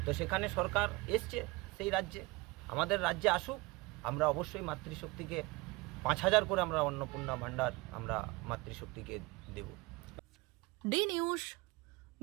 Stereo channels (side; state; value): left; quieter; 24.0 dB